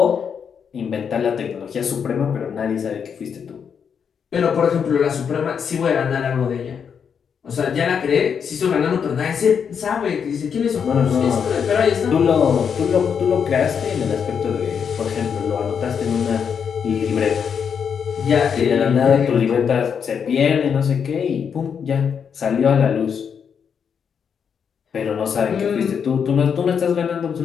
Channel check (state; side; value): quieter; right; 7.1 dB